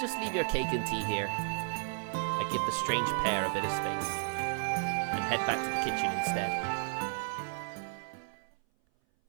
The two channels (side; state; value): left; silent; 56 dB below the other